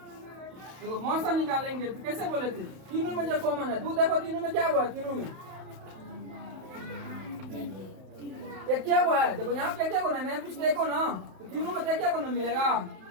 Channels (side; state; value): left; late; 31 ms